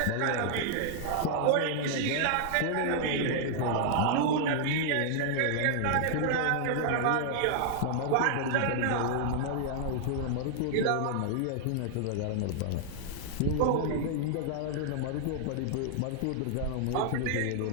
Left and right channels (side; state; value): both; different; correlation -0.01